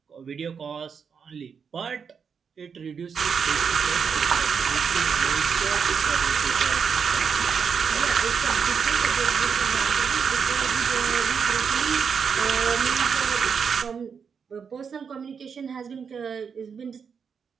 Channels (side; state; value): left; quieter; 6.4 dB